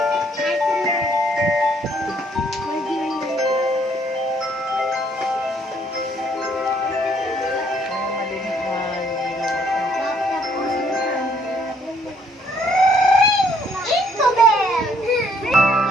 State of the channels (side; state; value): both; normal; correlation 0.66